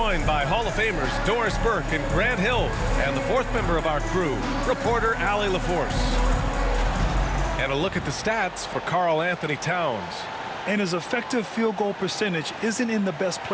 by Hall of Famers Doris Burke and Grant Hill, and the fourth member of our crew, reporter Allie LaForce. And a look at the stats for Karl Anthony Towns. And his effective field goal percentage isn't in the best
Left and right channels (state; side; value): identical; both; correlation 1.00